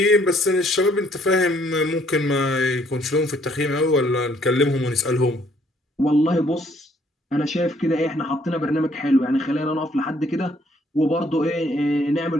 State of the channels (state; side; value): normal; both; correlation 0.65